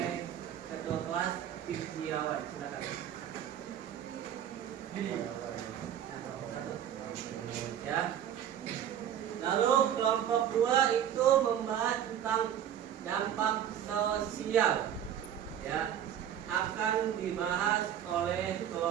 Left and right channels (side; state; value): left; quieter; 9.9 dB